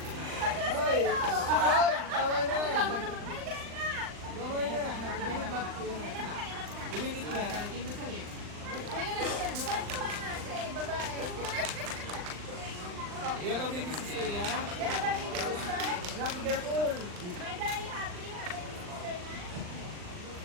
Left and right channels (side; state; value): left; late; 39 ms